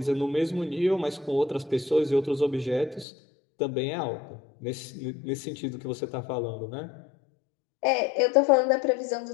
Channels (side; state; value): right; drops out; at 3.1 s